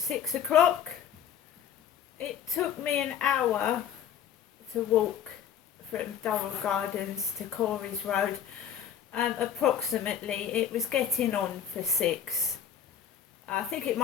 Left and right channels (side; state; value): right; quieter; 8.8 dB